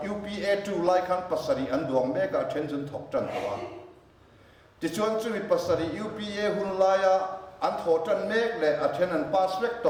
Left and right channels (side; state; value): both; identical; correlation 1.00